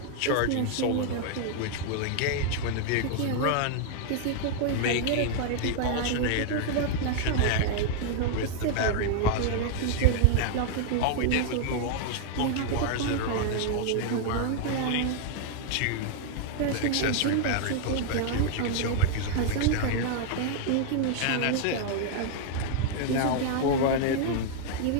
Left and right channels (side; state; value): both; different; correlation 0.00